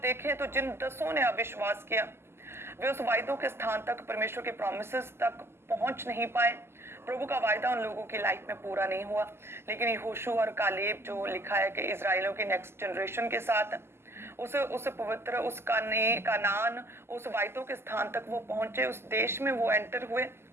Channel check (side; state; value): left; late; 0.12 ms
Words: देखें तो जिन 10 ने अविश्वास किया, वे उस वायदों के स्थान तक, परमेश्वर के प्रॉमिसेस तक पहुंच नहीं पाए। प्रभु का वायदा उन लोगों की लाइफ में पूरा नहीं हुआ। लेकिन यहोशू और कालेब, जो लिखा है कि इजराइलियों की नेक्स्ट जनरेशन के साथ उस पवित्र, उस कानान, उस वायदों के स्थान तक वो पहुंचे, उस देश में वो एंटर हुए,